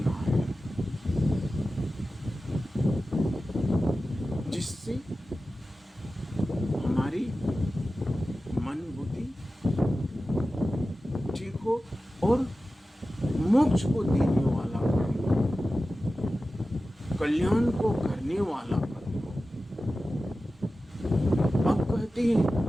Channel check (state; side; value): normal; both; correlation 0.94